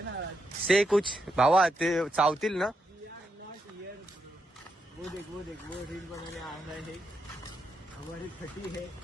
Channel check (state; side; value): normal; both; correlation 0.82